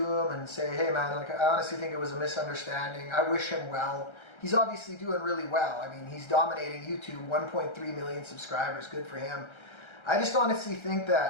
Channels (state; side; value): late; right; 1.3 ms